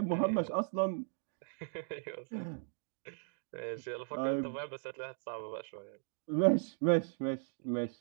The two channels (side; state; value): left; silent; digital silence